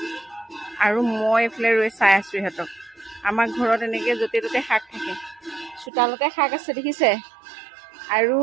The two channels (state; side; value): drops out; left; at 5.9 s